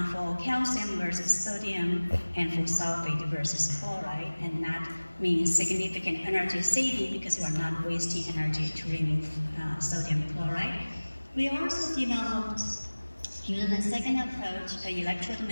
for calcium versus sodium and for sulfate versus chloride, and that means significant energy saving because we're not wasting energy to remove sodium chloride. We also developed, using the second approach, an electrode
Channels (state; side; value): inverted; both; correlation -1.00